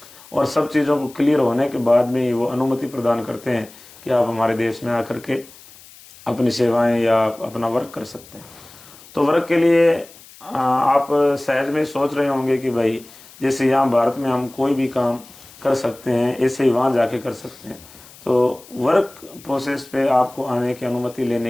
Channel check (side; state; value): left; noise; hiss, 22 dB below the sound